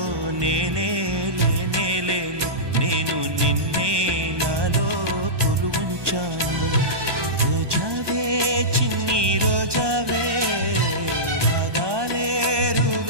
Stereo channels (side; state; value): left; late; 1.2 ms